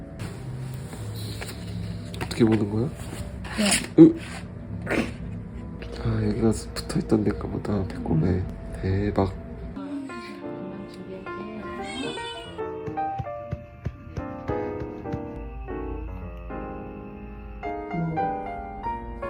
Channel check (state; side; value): identical; both; correlation 1.00